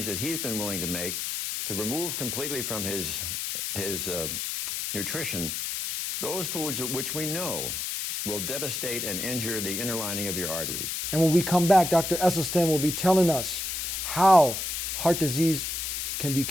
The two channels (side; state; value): left; noise; hiss, 3 dB below the sound